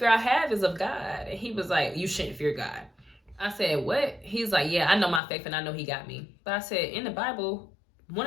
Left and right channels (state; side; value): drops out; right; at 5.2 s